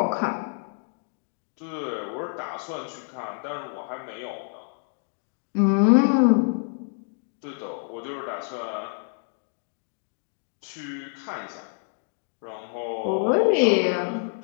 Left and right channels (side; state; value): right; silent; 60 dB below the other